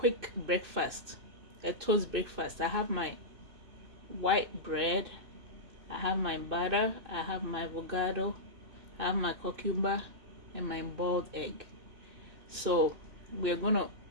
breakfast, a toast breakfast. I have my white bread, I have my butter, I have my avocado, I have my cucumber and my boiled egg. So we're going to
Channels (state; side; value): late; left; 2.6 ms